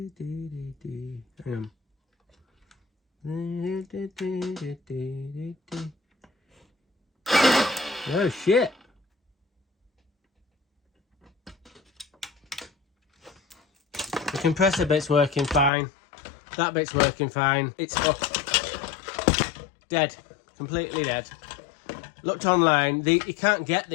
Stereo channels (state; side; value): drops out; right; at 15.7 s